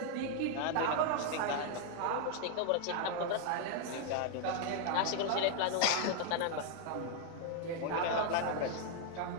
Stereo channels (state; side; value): different; both; correlation 0.00